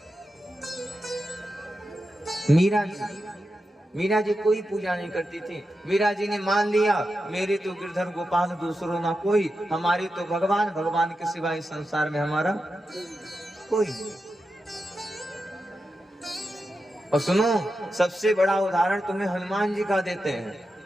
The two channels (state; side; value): normal; both; correlation 0.89